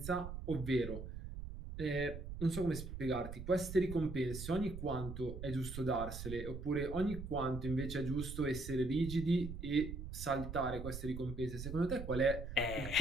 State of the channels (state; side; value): noise; right; rumble, 8 dB below the sound